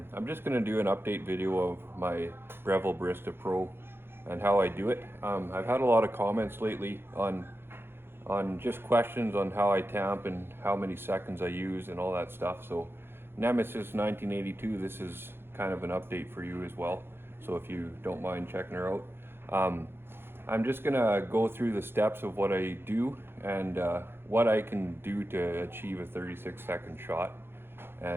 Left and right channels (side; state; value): left; late; 0.11 ms